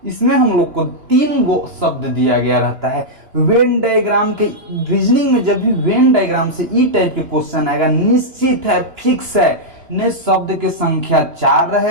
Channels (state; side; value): late; left; 2.9 ms